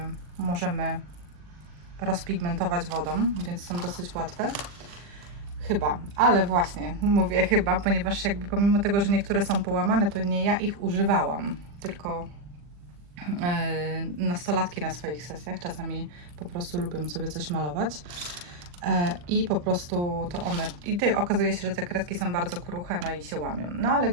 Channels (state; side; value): late; left; 40 ms